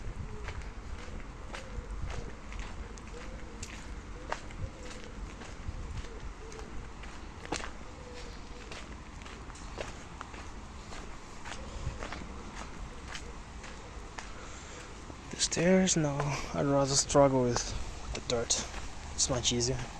The stairs? No, I'd rather struggle with the dirt. It's much easier.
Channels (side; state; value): both; identical; correlation 1.00